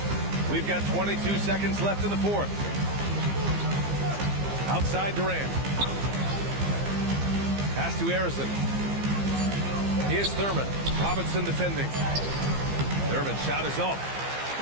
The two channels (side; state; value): left; late; 15 ms